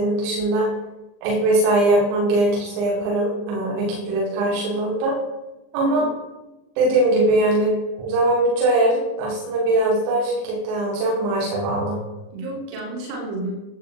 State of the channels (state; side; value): late; left; 39 ms